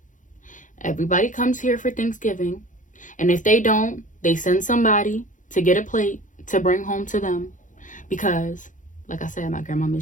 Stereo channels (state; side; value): late; right; 0.37 ms